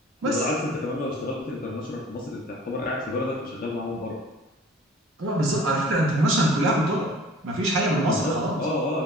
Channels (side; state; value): both; normal; correlation 0.47